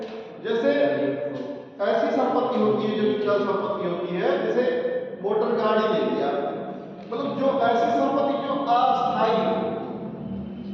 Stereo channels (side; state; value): both; identical; correlation 1.00